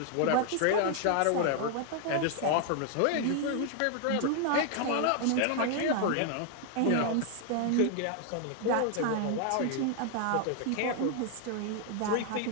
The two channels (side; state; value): both; different; correlation 0.00